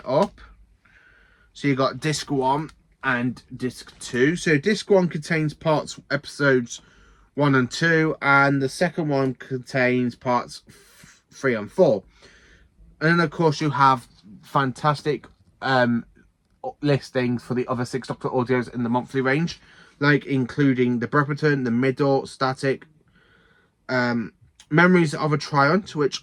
up, so you've got disc 1 and disc 2. So disc 1 contains episodes 1 and 2, and the second one contains parts 3 and 4. And then, of course, you have fantastic listings for the other 6 Doctor audios in the monthly range, like including The Brepperton, The Middle, Static, Memories of a Triumph, which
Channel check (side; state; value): both; identical; correlation 1.00